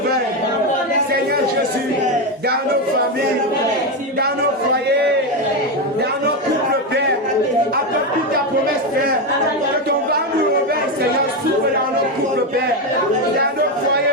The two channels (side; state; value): both; normal; correlation 0.10